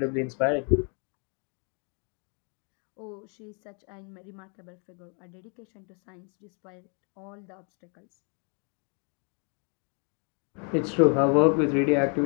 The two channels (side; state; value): right; quieter; 38.2 dB